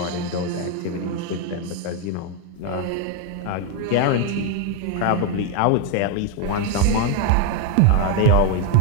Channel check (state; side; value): different; both; correlation 0.01